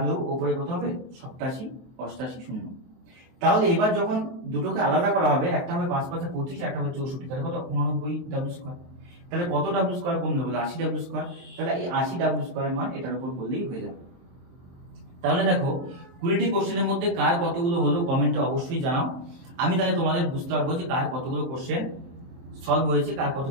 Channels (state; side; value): late; left; 23 ms